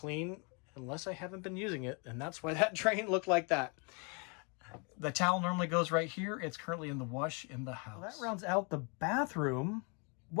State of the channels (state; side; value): quieter; right; 34.5 dB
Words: unless I haven't been using it, and that's why that drain looked like that. The towel normally goes right here. It's currently in the wash in the house. Well, that rounds out the bathroom.